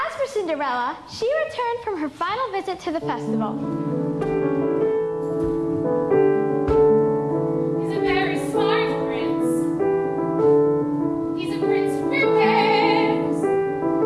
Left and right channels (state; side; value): identical; both; correlation 1.00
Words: for Cinderella, she returned from her final visit to the festival. He's a very smart prince. He's a prince who prepares.